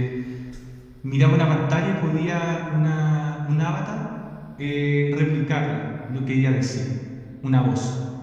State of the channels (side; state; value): both; identical; correlation 1.00